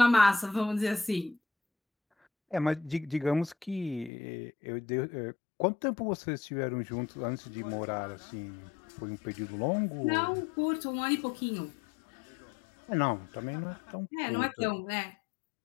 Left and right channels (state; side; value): drops out; right; at 4.1 s